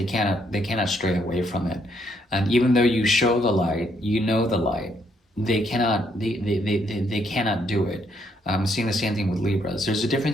cannot stray away from it. And even though you show the light, you know the light, they cannot do it. I'm seeing the same thing with Libras. There's a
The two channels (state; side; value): normal; both; correlation 0.72